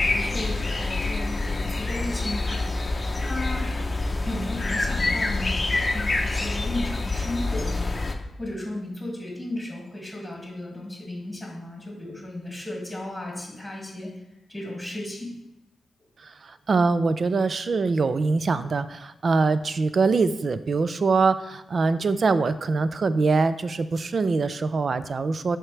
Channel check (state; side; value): normal; both; correlation 0.91